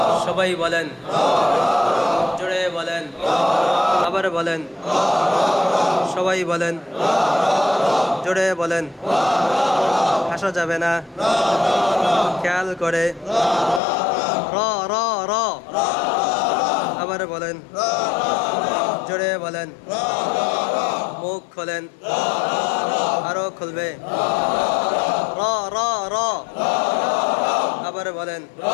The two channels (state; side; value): drops out; right; at 13.8 s